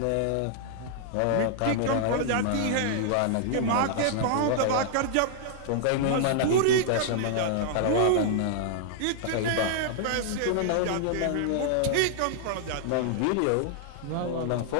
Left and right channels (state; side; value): different; both; correlation -0.01